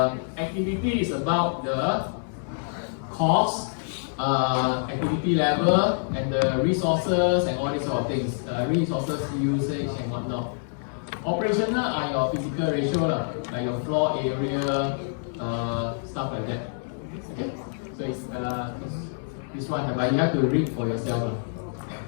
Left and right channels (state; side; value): silent; right; 61 dB below the other